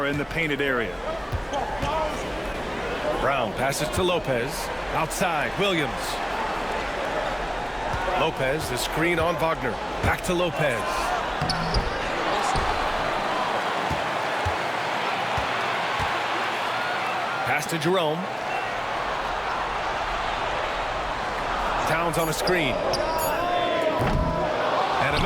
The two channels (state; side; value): identical; both; correlation 1.00